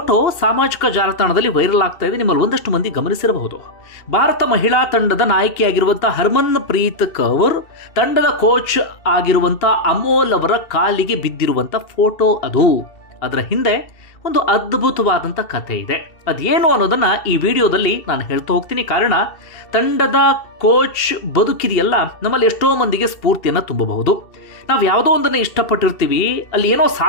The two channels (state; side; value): late; right; 2.7 ms